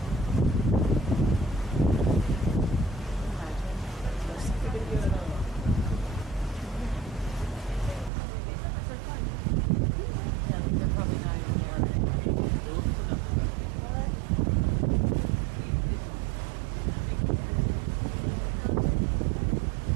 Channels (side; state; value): left; drops out; at 8.1 s